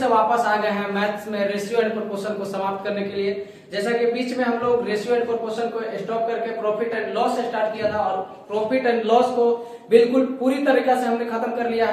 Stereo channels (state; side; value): identical; both; correlation 1.00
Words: वापस आ गए हैं मैथ्स में रेशियो एंड प्रोपोर्शन को समाप्त करने के लिए। जैसा कि बीच में हम लोग रेशियो एंड प्रोपोर्शन को स्टॉप करके प्रॉफिट एंड लॉस से स्टार्ट किया था और प्रॉफिट एंड लॉस को बिल्कुल पूरी तरीके से हमने खत्म कर लिया